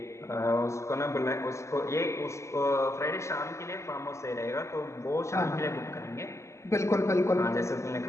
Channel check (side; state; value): right; late; 0.14 ms